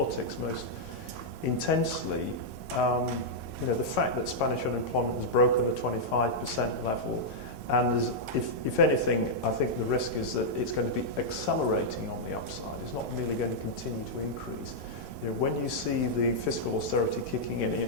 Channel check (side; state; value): both; normal; correlation -0.06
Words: most intensely. The fact that Spanish unemployment has broken the 25% level, and if anything, I think the risk is that it's going to be accelerating on the upside. It's not merely going to continue to increase. When you see the fiscal austerity kicking in,